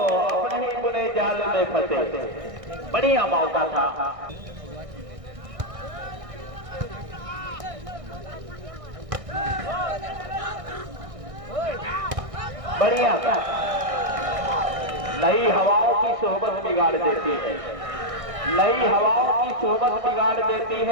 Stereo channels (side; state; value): left; late; 1.6 ms